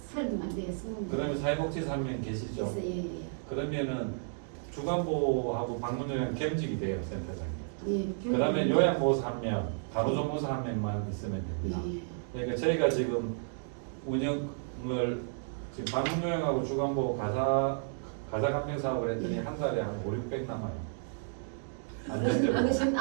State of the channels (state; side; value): silent; left; digital silence